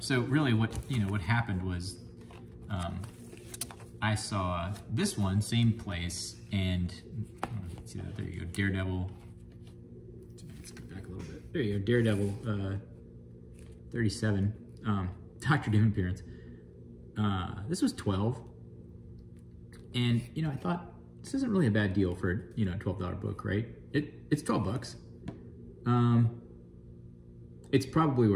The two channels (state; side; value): identical; both; correlation 1.00